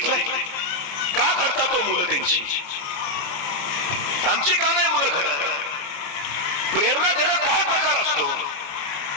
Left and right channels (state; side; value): late; right; 29 ms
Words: का? घडतात तो मुलं त्यांची. आमची का नाही मुलं घडत? प्रेरणा देणं काय प्रकार असतो?